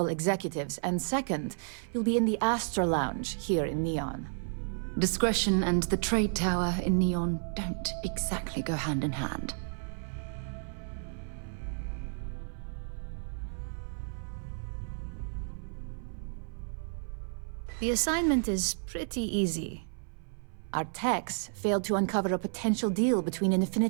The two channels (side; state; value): left; silent; 55 dB below the other